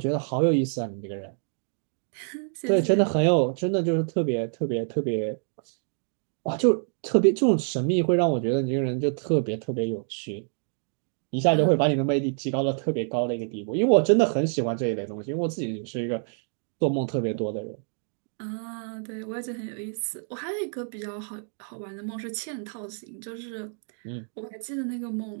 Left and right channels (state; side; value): silent; left; 58 dB below the other